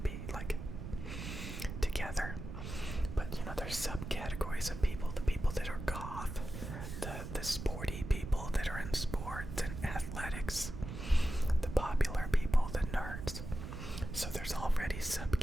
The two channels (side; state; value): right; noise; rumble, 7 dB below the sound